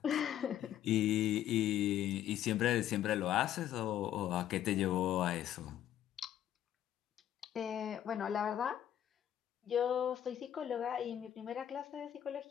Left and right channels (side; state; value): right; quieter; 11.3 dB